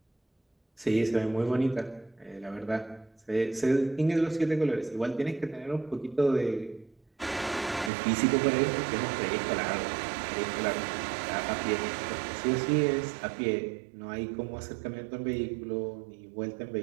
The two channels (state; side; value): drops out; left; at 7.9 s